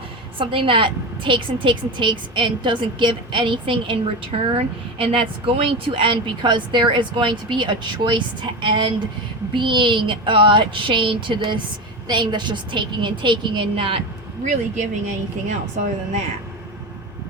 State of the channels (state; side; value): normal; both; correlation 0.22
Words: something that takes and takes and takes and doesn't give anything in return, and that's going to end because there is going to be a choice to end being chained to this thing that's just taking and not really giving anything else other than that.